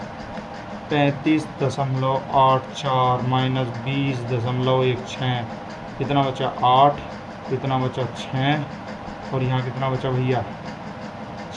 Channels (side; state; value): both; identical; correlation 1.00